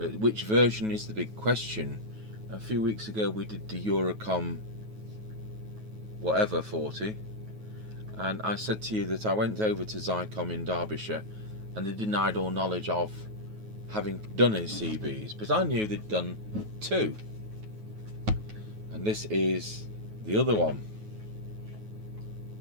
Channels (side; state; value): left; late; 9.3 ms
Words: which version is the big question? A few weeks ago we did the Eurocomm whatever 40, and I said to you that I went over to Zycomm in Derbyshire and they denied all knowledge of having done any CBs, but I knew they'd done two. And this is the other one.